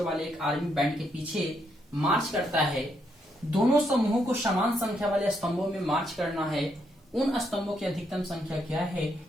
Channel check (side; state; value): both; normal; correlation 0.77